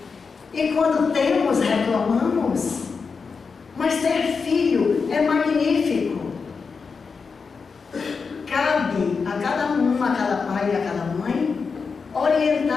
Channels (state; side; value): quieter; right; 5.1 dB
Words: E quando temos, reclamamos. Mas ter filho é magnífico. Cabe a cada um, a cada pai e a cada mãe,